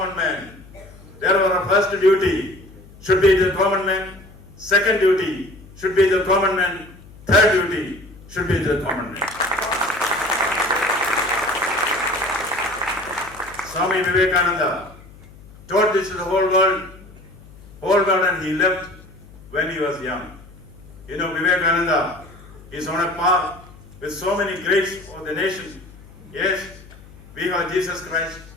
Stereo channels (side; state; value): left; noise; hum, 21 dB below the sound